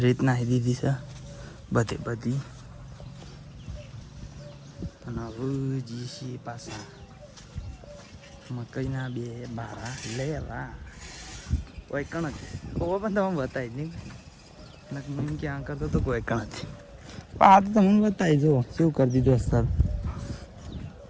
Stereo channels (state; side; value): identical; both; correlation 1.00